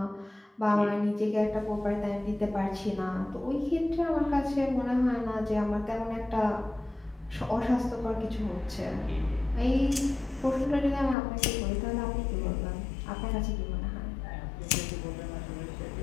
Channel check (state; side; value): drops out; right; at 11.2 s